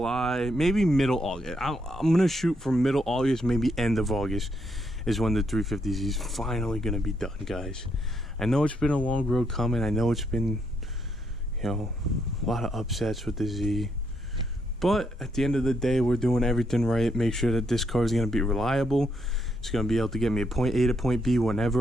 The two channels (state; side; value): normal; both; correlation 0.76